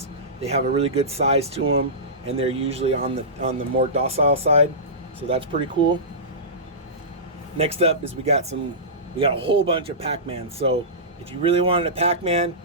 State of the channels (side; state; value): both; normal; correlation -0.20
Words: They have a really good size to them, and they're usually on the more docile side. So that's pretty cool. Next up is we got a whole bunch of Pac-Man. So if you really wanted a Pac-Man,